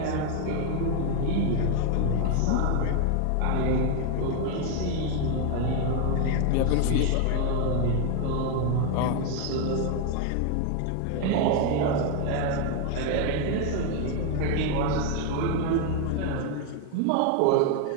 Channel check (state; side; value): different; both; correlation 0.01